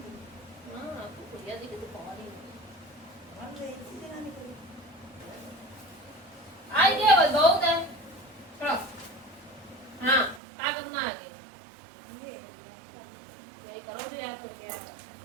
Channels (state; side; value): drops out; left; at 10.4 s